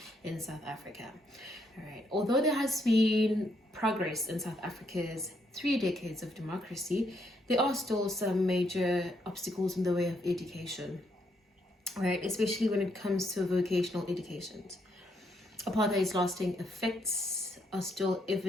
in South Africa. All right. Although there has been progress in South Africa's 3 decades of democracy, there are still some major obstacles in the way of education, right? Especially when it comes to vocational education. Apartheid's lasting effects are still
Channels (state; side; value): normal; both; correlation 0.74